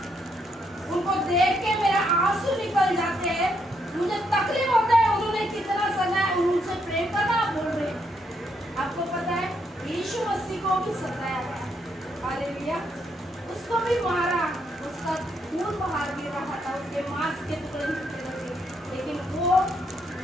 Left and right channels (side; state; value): both; normal; correlation 0.76